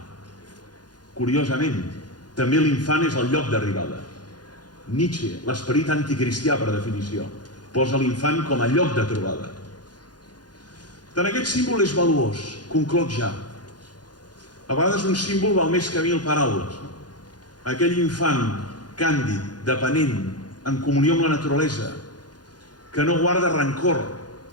Curiosament, també l'infant és el lloc d'arribada. Nietzsche, l'esperit anticristià per definició, posa l'infant com a lloc de trobada. Tant aquest símbol és valuós, concloc ja. A vegades un símbol val més que 1000 paraules. Aquell infant càndid, dependent, en comunió amb la naturalesa, que no guarda rancor,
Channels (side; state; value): right; late; 0.69 ms